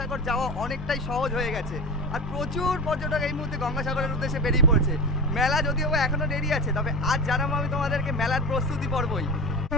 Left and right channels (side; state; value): both; normal; correlation 0.27